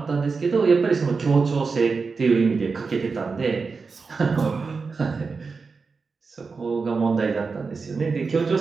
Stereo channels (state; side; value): quieter; left; 4.7 dB